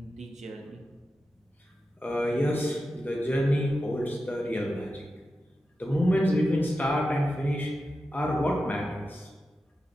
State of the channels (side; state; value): both; normal; correlation 0.91